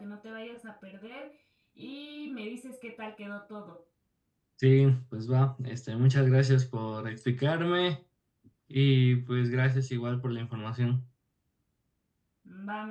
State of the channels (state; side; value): identical; both; correlation 1.00